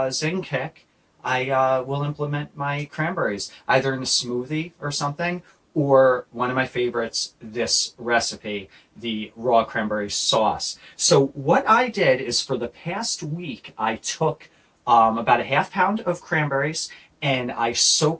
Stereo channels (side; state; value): both; identical; correlation 1.00